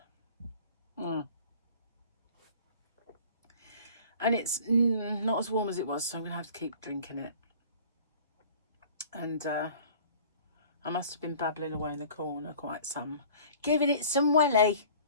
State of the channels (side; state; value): both; inverted; correlation -0.47